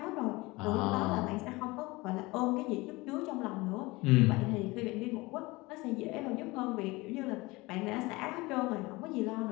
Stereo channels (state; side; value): quieter; right; 22.4 dB